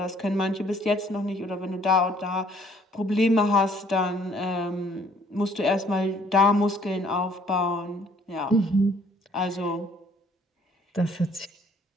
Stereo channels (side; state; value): both; normal; correlation 0.60